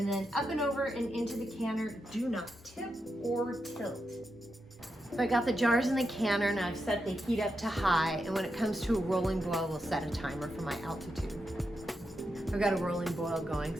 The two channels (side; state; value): both; normal; correlation 0.86